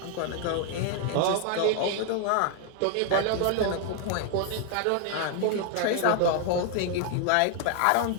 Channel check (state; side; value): different; both; correlation 0.00